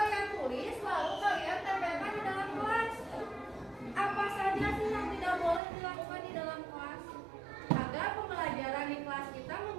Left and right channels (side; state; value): left; drops out; at 5.6 s